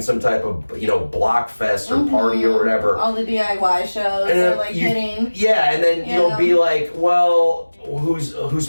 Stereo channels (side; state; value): both; inverted; correlation -1.00